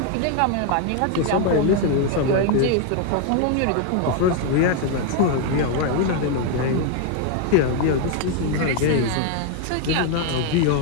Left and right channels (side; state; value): both; different; correlation 0.01